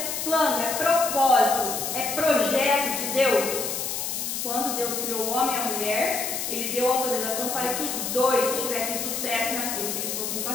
plano, é propósito, é projeto de Deus. Quando Deus criou o homem e a mulher, Ele deu autorização para que os dois tivessem sucesso naquilo que eles fossem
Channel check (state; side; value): noise; left; hiss, 3 dB below the sound